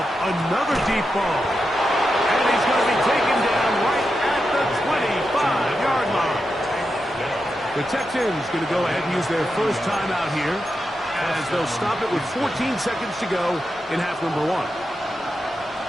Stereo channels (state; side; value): normal; both; correlation 0.88